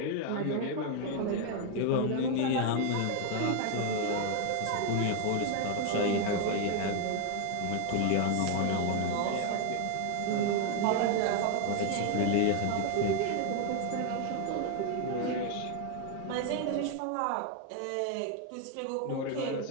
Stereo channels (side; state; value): both; different; correlation 0.00